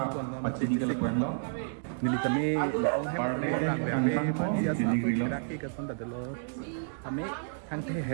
pacini ke lekwendo nili kami ong hem orang bebe pansia sapu kiraki ke sonda delo kami thang the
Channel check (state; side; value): silent; left; digital silence